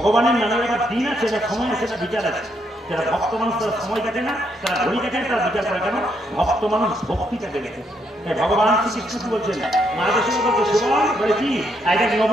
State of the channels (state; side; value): normal; both; correlation 0.75